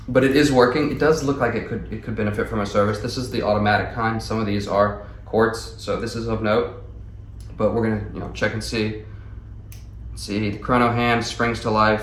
But it is working. It does look like it could benefit from a service. This is the automatic kind. Some of these are quartz, so this is of note. But we're gonna, you know, check and see. See, the chrono hand springs to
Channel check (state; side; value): identical; both; correlation 1.00